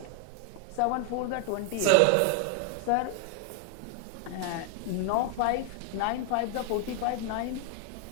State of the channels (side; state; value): both; different; correlation 0.00